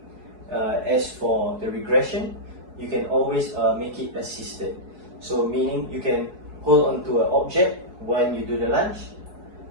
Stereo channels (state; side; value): late; left; 4.7 ms